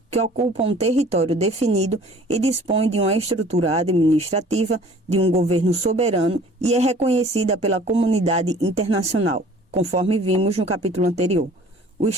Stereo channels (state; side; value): normal; both; correlation 0.50